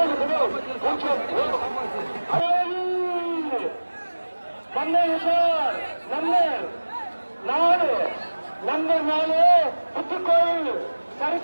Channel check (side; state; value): both; inverted; correlation -1.00